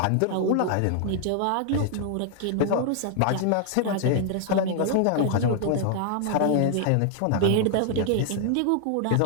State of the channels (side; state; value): both; different; correlation 0.00